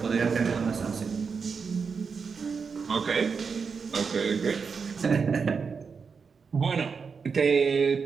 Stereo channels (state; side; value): quieter; left; 5.5 dB